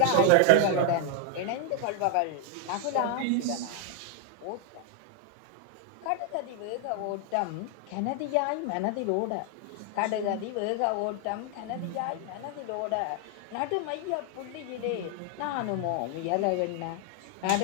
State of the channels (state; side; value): different; both; correlation 0.00